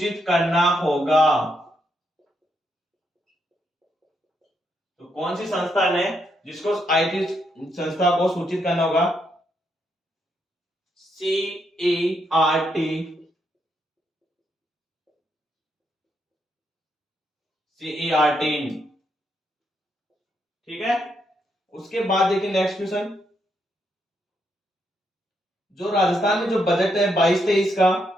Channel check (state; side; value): normal; both; correlation 0.78